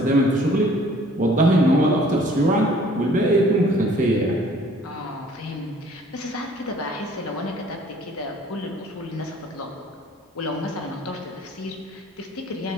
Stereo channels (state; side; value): normal; both; correlation 0.55